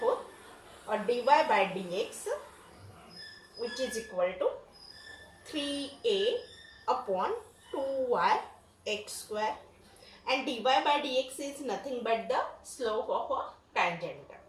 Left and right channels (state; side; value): identical; both; correlation 1.00